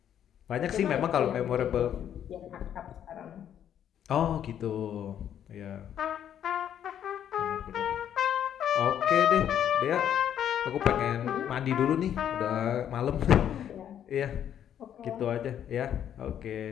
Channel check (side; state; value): right; quieter; 9.8 dB